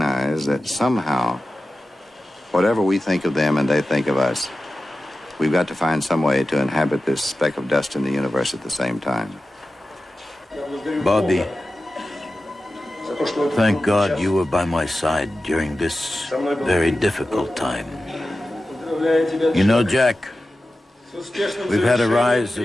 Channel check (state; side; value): normal; both; correlation 0.94